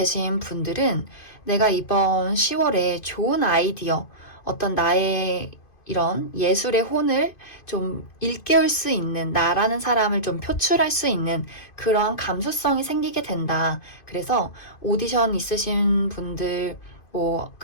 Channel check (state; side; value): late; right; 2.5 ms